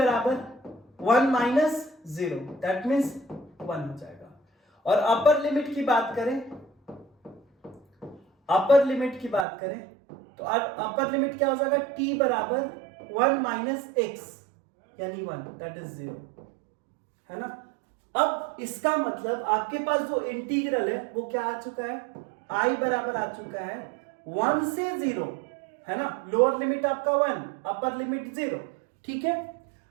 1 minus 0, दैट मीन्स 1 हो जाएगा। और अपर लिमिट की बात करें, तो अपर लिमिट क्या हो जाएगा, t बराबर 1 minus x यानी 1, दैट इज 0, है ना। अब इसका मतलब आपके पास जो इंटीग्रल है वो क्या आ चुका है, i बराबर आ चुका है 1 से 0, है ना। लोअर लिमिट आपका 1, अपर लिमिट 0। ठीक है,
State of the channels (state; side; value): drops out; left; at 9.5 s